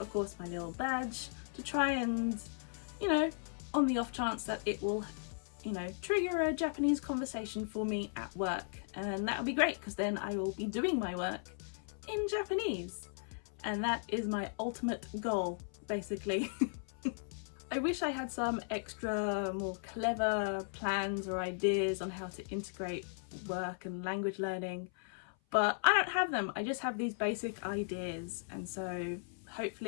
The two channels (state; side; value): silent; right; 53 dB below the other